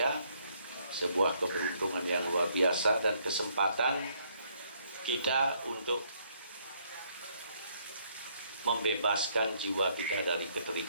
sebuah keberuntungan yang luar biasa dan kesempatan kita untuk membebaskan jiwa kita dari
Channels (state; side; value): inverted; both; correlation -0.69